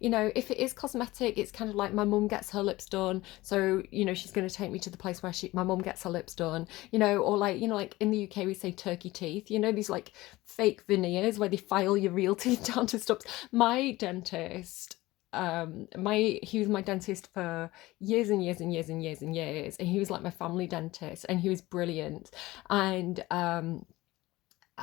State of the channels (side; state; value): right; quieter; 18.8 dB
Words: If it is cosmetic, it's kind of like my mum gets her lips done, so she's going to take me to the place where my mum gets her lips done, or like like in the UK we say turkey teeth, these like fake veneers where they file your real teeth down to stops. My dentist, he was my dentist for years and years and years and years and years, and he was like my family dentist, and he was brilliant. And